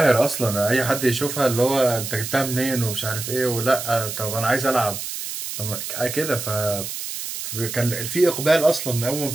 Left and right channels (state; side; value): noise; right; hiss, 6 dB below the sound